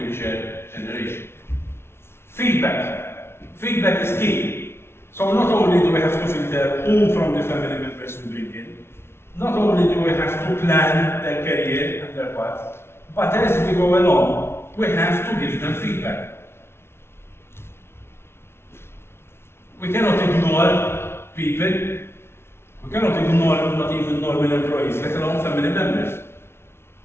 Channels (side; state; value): right; late; 0.12 ms